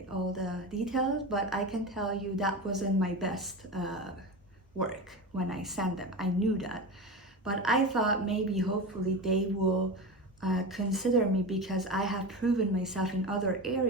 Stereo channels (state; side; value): normal; both; correlation 0.24